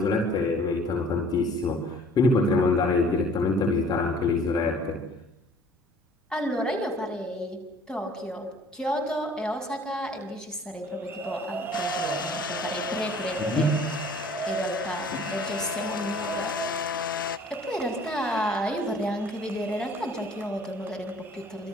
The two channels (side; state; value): both; normal; correlation 0.53